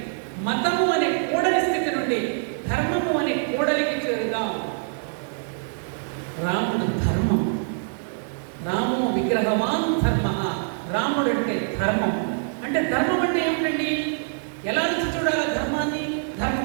మతము అనే కూడలి స్థితి నుండి ధర్మము అనే కూడలికి చేరుదాం. రాముడు ధర్మం, రాము విగ్రహవాన్ ధర్మ. రాముడు అంటే ధర్మం. అంటే ధర్మం అంటే ఏమిటండి? ఎలా నుంచి చూడాలి ధర్మాన్ని?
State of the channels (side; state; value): left; silent; digital silence